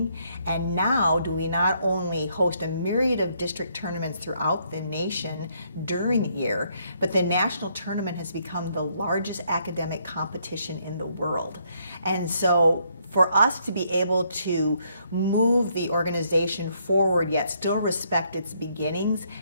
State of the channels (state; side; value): inverted; both; correlation -0.71